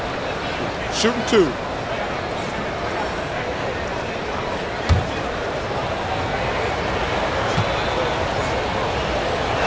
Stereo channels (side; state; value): both; identical; correlation 1.00